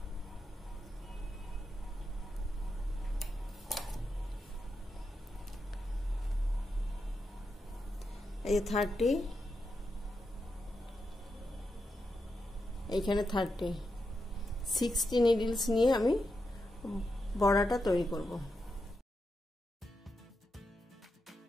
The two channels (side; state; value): both; normal; correlation 0.86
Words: এই 30, এইখানে 30, 60 নিডলস নিয়ে আমি বর্ডারটা তৈরি করব।